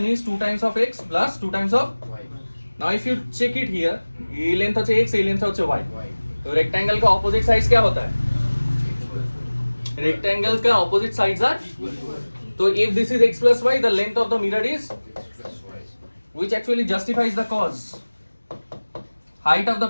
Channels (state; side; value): inverted; both; correlation -1.00